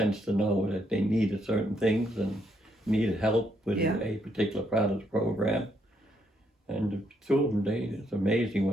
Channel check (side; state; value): both; normal; correlation 0.74